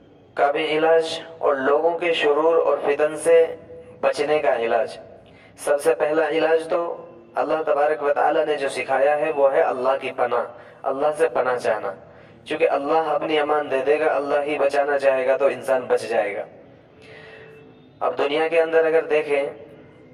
کا بھی علاج اور لوگوں کے شرور اور فتن سے بچنے کا علاج، سب سے پہلا علاج تو اللہ تبارک و تعالیٰ نے جو سکھایا ہے وہ ہے اللہ کی پناہ، اللہ سے پناہ چاہنا، چونکہ اللہ اپنی امان دے دے گا، اللہ ہی بچانا چاہے گا تو انسان بچ جائے گا۔ اب دنیا کے اندر اگر دیکھیں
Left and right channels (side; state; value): both; identical; correlation 1.00